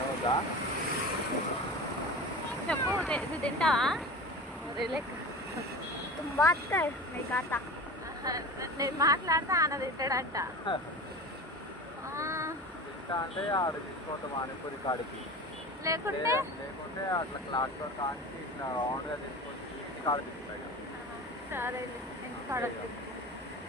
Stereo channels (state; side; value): normal; both; correlation 0.33